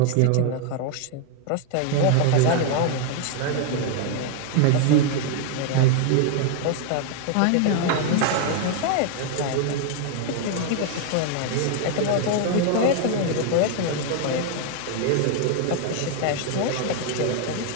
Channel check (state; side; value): different; both; correlation 0.00